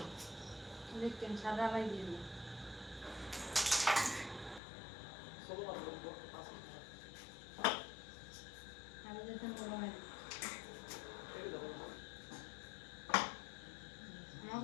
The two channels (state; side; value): drops out; right; at 4.6 s